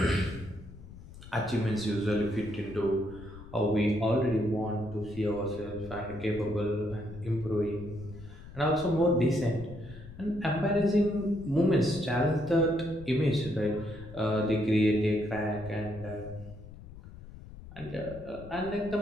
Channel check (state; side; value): noise; left; rumble, 16 dB below the sound